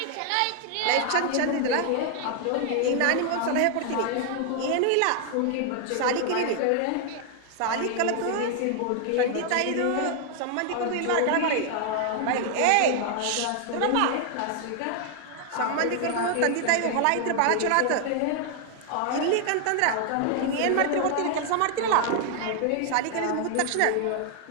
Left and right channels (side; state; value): both; different; correlation 0.00